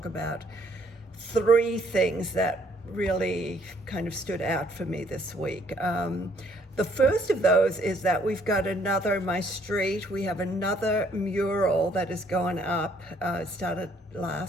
about 3 things that really kind of stood out for me this week. The first of those is that we've got my street, we have another mural that is going up. It started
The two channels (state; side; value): normal; both; correlation 0.65